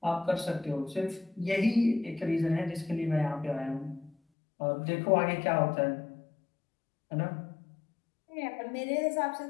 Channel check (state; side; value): drops out; right; at 4.2 s